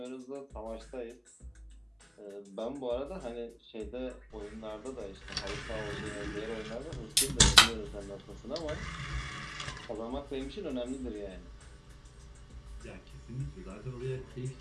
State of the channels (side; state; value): both; identical; correlation 1.00